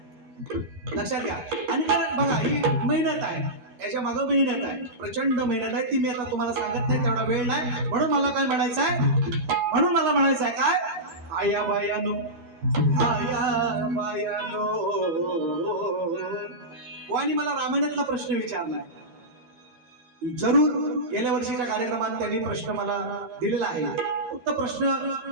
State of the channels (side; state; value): left; late; 13 ms